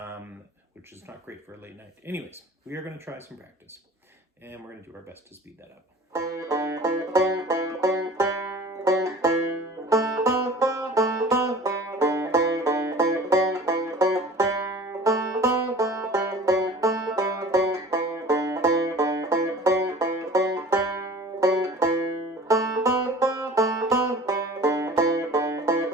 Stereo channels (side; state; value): both; normal; correlation 0.43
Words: which is not great for a late night. Anyways, we are going to try some practice, and we're going to do our best to speed that up.